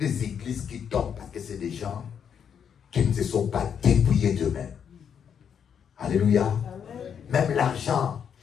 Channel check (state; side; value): quieter; right; 7.8 dB